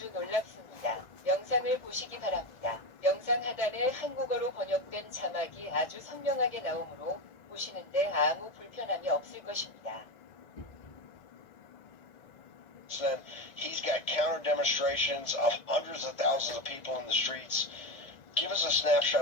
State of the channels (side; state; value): right; late; 1.6 ms